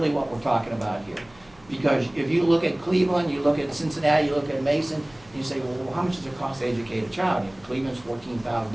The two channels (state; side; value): noise; right; hum, 28 dB below the sound